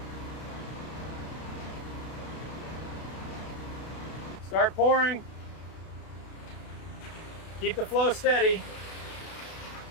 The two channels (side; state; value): right; late; 32 ms